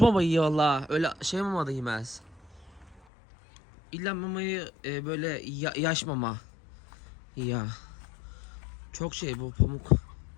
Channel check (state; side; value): drops out; right; at 3.0 s